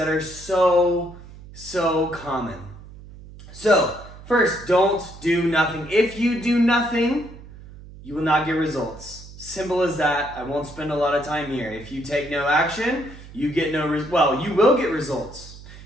are so common. So, first, don't do nothing. If you do nothing, you will not get results. Simple as that. I won't spend a lot of time here. If you take no action, you get you will get results.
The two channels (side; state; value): right; noise; hum, 17 dB below the sound